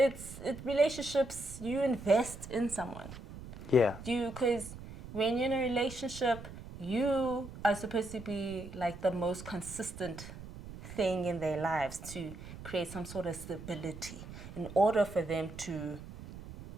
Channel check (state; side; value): noise; right; rumble, 13 dB below the sound